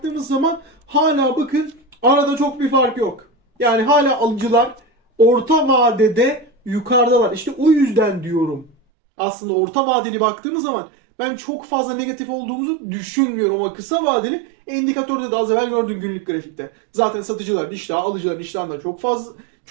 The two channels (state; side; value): drops out; left; at 8.8 s